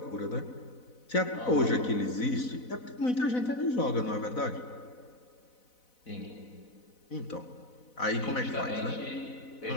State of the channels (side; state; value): right; late; 4.0 ms